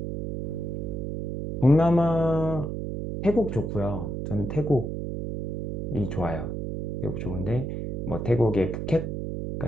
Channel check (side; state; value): right; noise; hum, 4 dB below the sound